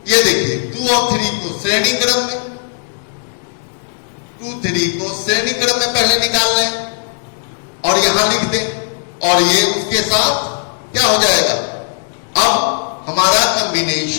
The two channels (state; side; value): silent; right; digital silence